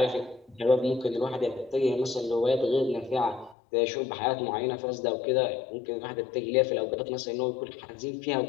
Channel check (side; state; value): right; drops out; at 3.6 s